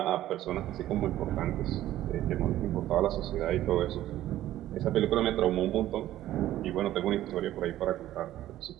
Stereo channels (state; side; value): quieter; left; 13.7 dB